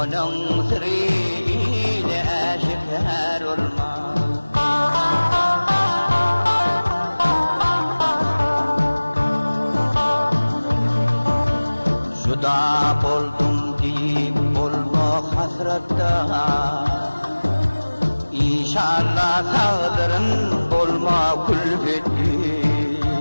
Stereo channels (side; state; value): both; inverted; correlation -1.00